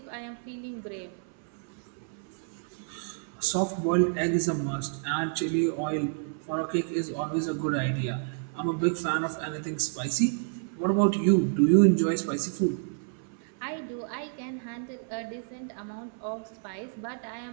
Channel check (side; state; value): left; silent; 58 dB below the other